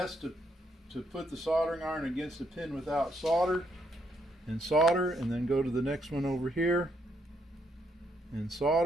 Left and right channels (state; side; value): normal; both; correlation 0.74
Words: to put the soldering iron against a pin without solder, and then go to the next one over here and